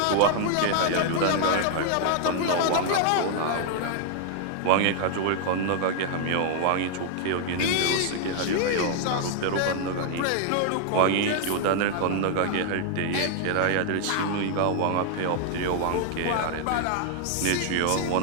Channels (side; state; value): both; different; correlation 0.00